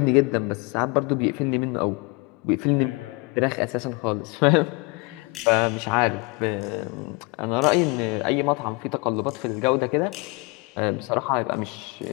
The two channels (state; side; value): quieter; right; 28.8 dB